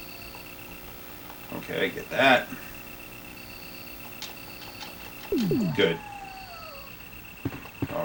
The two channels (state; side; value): identical; both; correlation 1.00